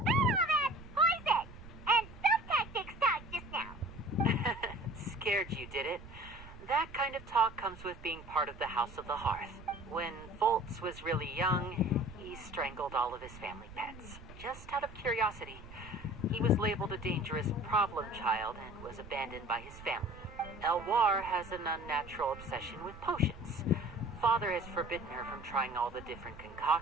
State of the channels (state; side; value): noise; right; rumble, 16 dB below the sound